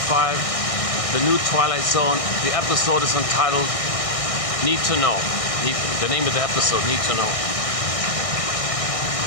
the new Twilight Zone. The episode is entitled Need to Know. The name of the episode, Need to Know.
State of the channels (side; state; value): right; late; 1.6 ms